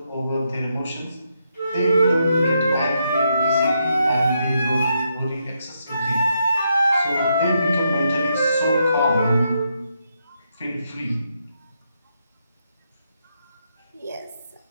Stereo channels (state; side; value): inverted; both; correlation -0.80